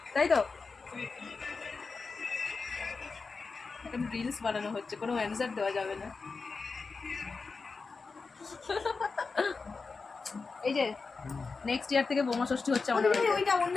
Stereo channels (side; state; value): right; quieter; 4.4 dB